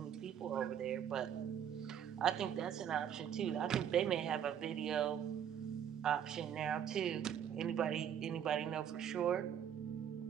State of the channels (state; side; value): quieter; left; 9.1 dB